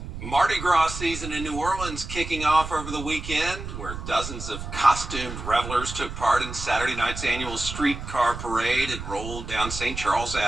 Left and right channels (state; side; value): noise; right; rumble, 8 dB below the sound